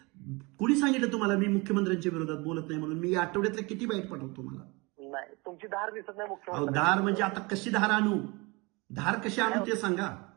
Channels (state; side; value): quieter; left; 26.3 dB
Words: कुणी सांगितलं तुम्हाला मी मुख्यमंत्र्यांच्या विरोधात बोलत नाही म्हणून? मी आठवड्यातले किती बाईट पाठवतो तुम्हाला? नाही, तुमची धार दिसत नाही अहो मुख्यमंत्री. धार म्हणजे आता कशी धार आणू? धार कशी आणू ते सांगा.